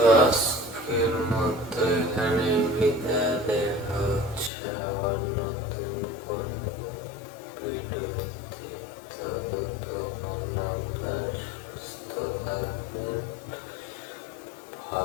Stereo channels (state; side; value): drops out; right; at 4.5 s